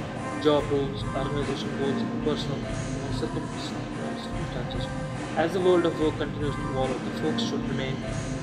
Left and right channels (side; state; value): both; identical; correlation 1.00